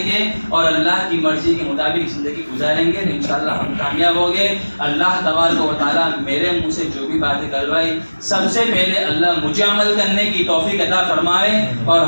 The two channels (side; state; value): both; inverted; correlation -1.00